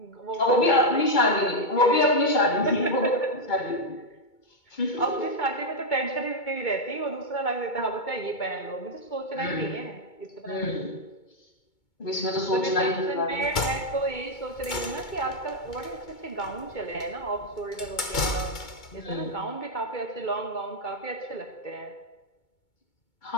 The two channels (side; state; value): right; late; 2.2 ms